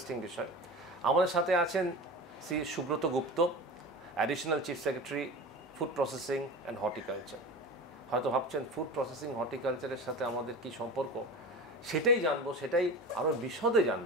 বিষয়। আমাদের সাথে আছেন Shri Subrata Gupta, additional chief secretary, food processing and horticulture. হয়তো ভাবছেন ফুড প্রসেসিং হর্টিকালচারের সাথে আমাদের কি সম্পর্ক, সেটাই জানবো, সেটাই আরও বিশদে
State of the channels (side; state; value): both; normal; correlation 0.31